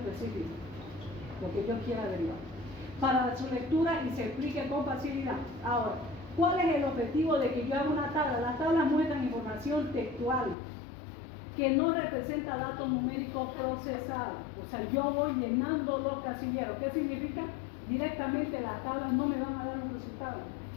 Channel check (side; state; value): right; drops out; at 10.6 s